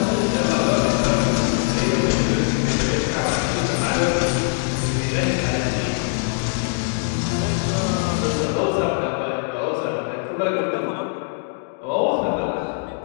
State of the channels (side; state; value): right; silent; digital silence